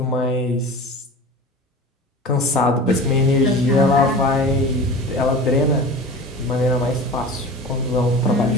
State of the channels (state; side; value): normal; both; correlation 0.36